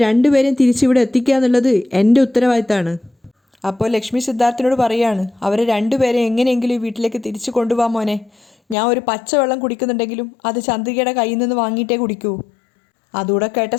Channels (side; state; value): right; drops out; at 8.8 s